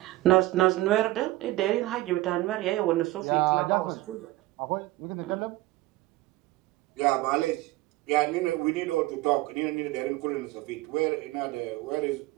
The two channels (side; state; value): left; quieter; 18.4 dB